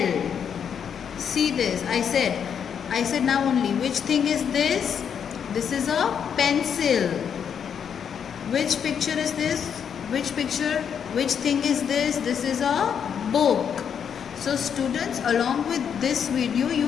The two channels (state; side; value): quieter; right; 7.7 dB